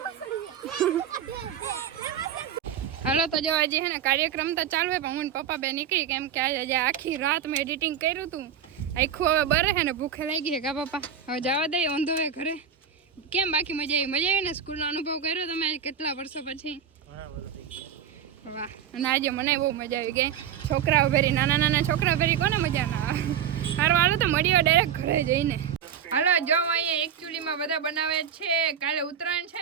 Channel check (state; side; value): quieter; left; 8.3 dB